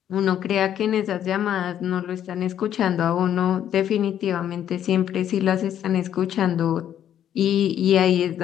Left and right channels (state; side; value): quieter; right; 10.3 dB